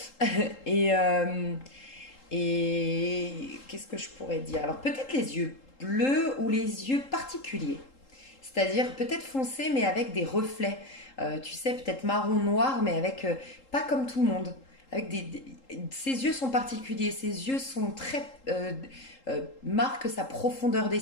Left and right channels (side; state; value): right; late; 3.8 ms